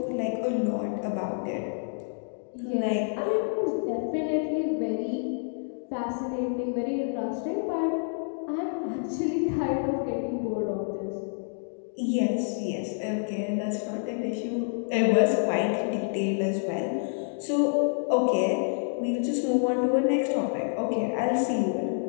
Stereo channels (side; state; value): right; silent; digital silence